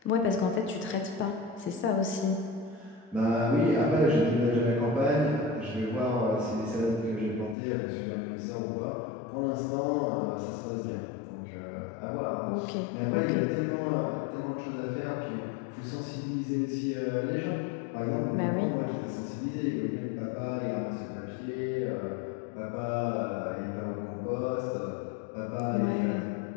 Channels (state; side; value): drops out; right; at 7.6 s